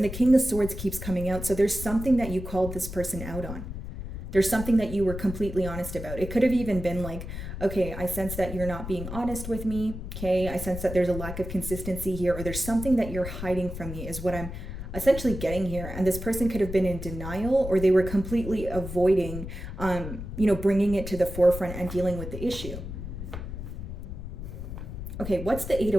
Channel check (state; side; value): noise; left; rumble, 8 dB below the sound